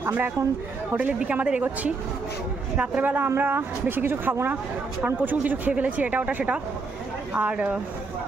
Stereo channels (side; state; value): left; quieter; 4.1 dB